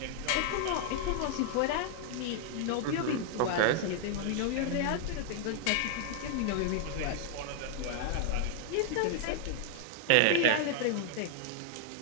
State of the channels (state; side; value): different; both; correlation 0.00